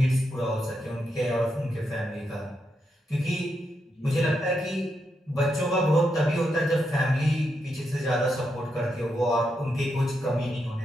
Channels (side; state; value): both; normal; correlation 0.83